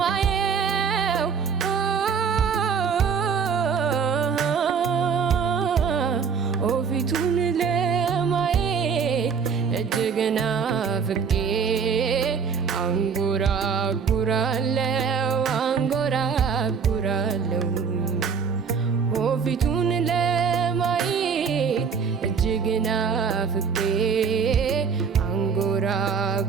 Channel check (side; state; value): left; quieter; 6.2 dB